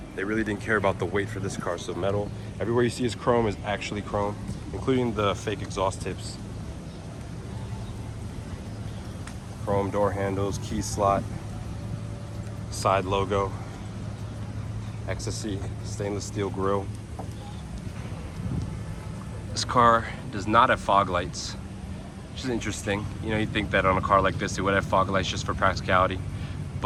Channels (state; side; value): identical; both; correlation 1.00